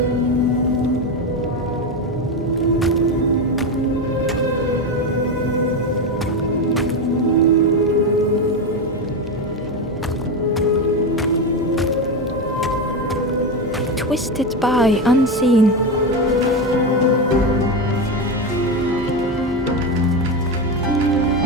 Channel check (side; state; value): both; normal; correlation 0.14